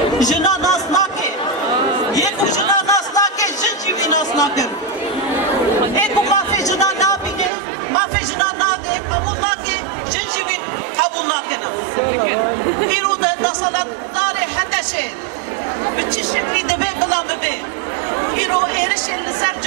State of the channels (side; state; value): left; drops out; at 7.5 s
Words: جنا ناس ناكي يكو جنا ناس ناكي جن جيوي ناس ناكي ايكو ما في جنا نابيني ما في جنا نادي قبول ناكي جن جيوي قبول ناكينا إيرو نصلت داري حتى شيء بتشي شكلي دبي بلا ببي إيرو إيرش لسر